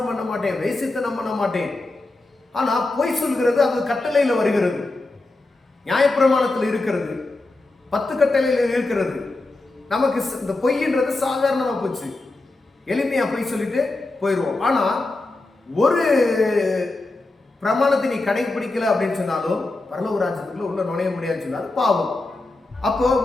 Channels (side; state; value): right; quieter; 3.1 dB